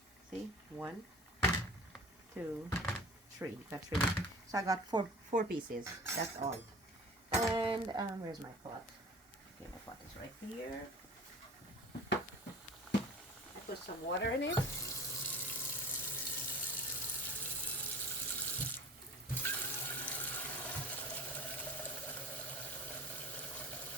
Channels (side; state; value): both; normal; correlation 0.41